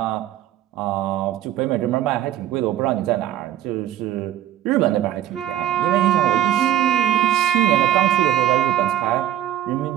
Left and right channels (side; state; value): left; quieter; 12.0 dB